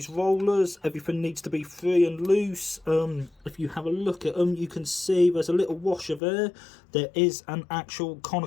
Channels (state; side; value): drops out; right; at 6.2 s